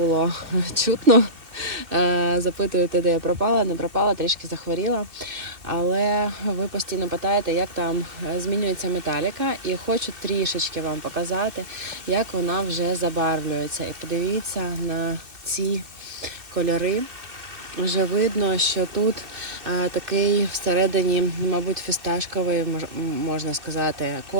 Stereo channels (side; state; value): left; late; 2.8 ms